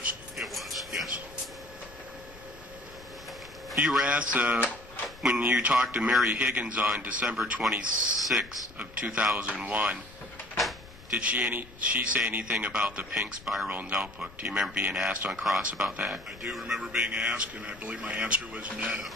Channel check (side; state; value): left; noise; rumble, 20 dB below the sound